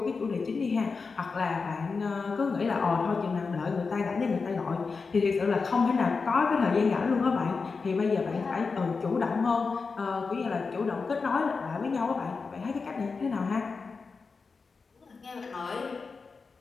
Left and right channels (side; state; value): right; quieter; 4.7 dB